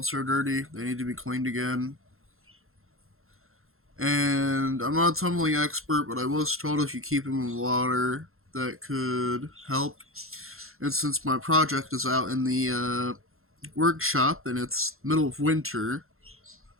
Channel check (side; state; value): left; late; 0.62 ms